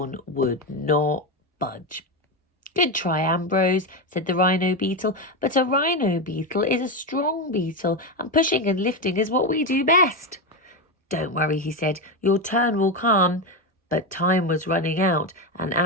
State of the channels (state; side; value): normal; both; correlation 0.12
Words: would not budge. Good try, Ambrose, said the rhino beetle, but a rhino beetle is a strong beetle and pushing and lifting is what we do best. Don't worry, he said, your turn will come. But time was running out and